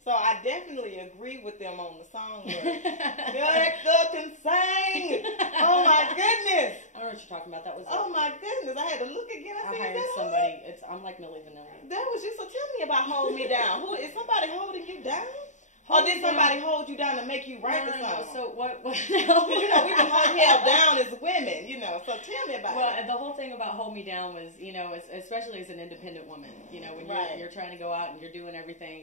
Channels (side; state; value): right; late; 0.35 ms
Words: So I definitely agree with them on the Songbird. Director can sing. Oh my goodness. I don't know what you're talking about. That was. Oh my goodness. I had to look again. I said, hired somebody. I'm like Millie Vanilli. That was you. So tell me about Hold Me Down. Who is somebody holding you down? Or did somebody hold you down to make you write the song? So what? Because we can hold held down as women, So tell me about it. Well, the whole thing about Hold Me Down was, especially as an independent woman, when you're trying to go out and you're doing